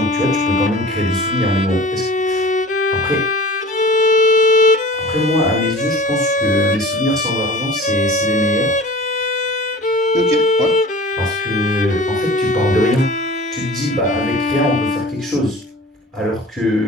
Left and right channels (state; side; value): normal; both; correlation 0.41